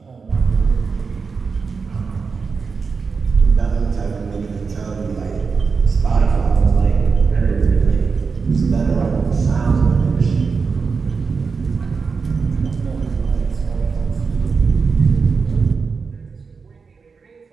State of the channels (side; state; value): left; quieter; 5.1 dB